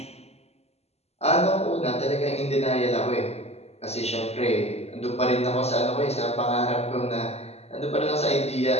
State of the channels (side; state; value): right; late; 0.30 ms